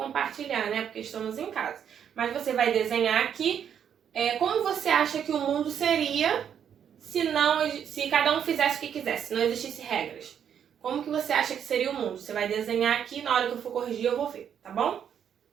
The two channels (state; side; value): quieter; left; 8.6 dB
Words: né? Porque estamos em casa. Mas você vai desenhar aqui como você acha que o mundo seria se cada um fizesse o que quisesse, se não existisse regras. Como que você acha que seria o mundo? Você vai desenhar aqui, na hora que eu for corrigir eu vou ver, tá bom?